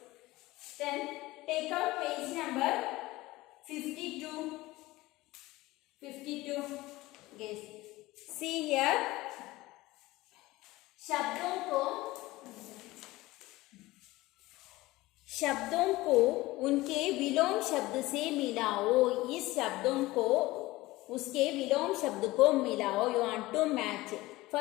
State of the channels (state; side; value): quieter; right; 19.1 dB